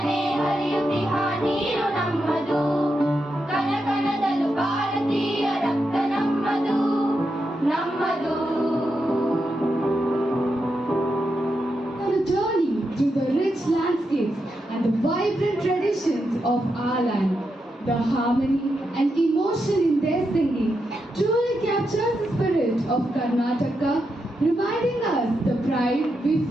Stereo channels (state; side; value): normal; both; correlation 0.85